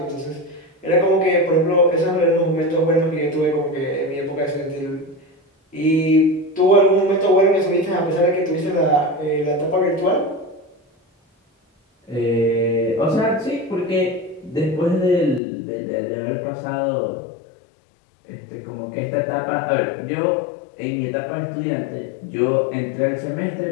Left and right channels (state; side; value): drops out; right; at 15.4 s